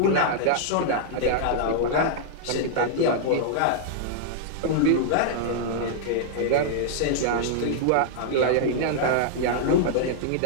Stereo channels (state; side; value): different; both; correlation -0.01